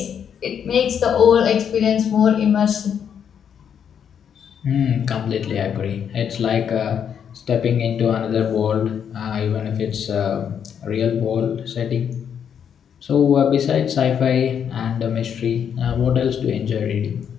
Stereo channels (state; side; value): quieter; right; 8.1 dB